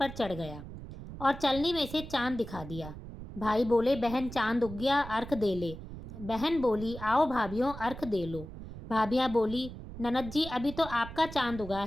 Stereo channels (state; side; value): noise; right; rumble, 12 dB below the sound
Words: चढ़ गया और चलनी में से चांद दिखा दिया। भाई बोले, बहन चांद उग गया, अर्घ दे ले। बहन बोली, आओ भाभियों अर्घ दे लो। भाभियाँ बोली, ननद जी अभी तो आपका चांद उगा